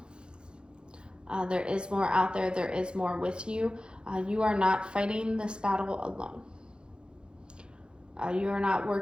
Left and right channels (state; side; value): late; left; 0.051 ms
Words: There is more out there. There is more with you. You are not fighting this battle alone. You are not